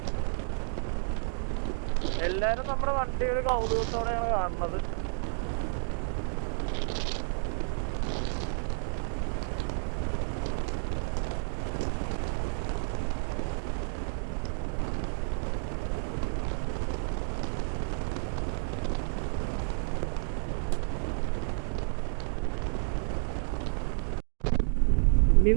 എല്ലാവരും നമ്മുടെ വണ്ടി ഒരു കൗതുകത്തോടെയാണ് കാണുന്നത്. ഇനി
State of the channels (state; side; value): silent; left; digital silence